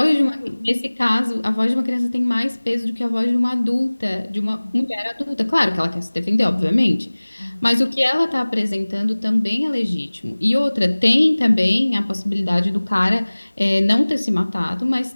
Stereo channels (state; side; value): inverted; both; correlation -1.00